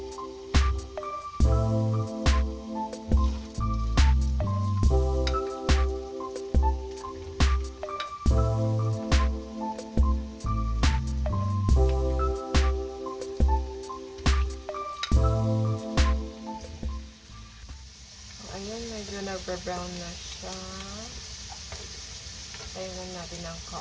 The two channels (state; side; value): identical; both; correlation 1.00